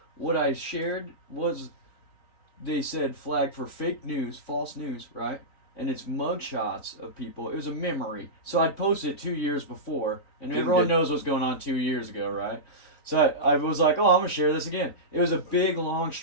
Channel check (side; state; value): right; late; 3.9 ms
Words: What I shared was, they said flag for fake news, false news, right? And it's mugshots of people. It was a memory. So I'd posted it 2 years before, and everyone knows what's going on 2 years ago, right? So I was like, oh, I'm going to share this again. It was a big, long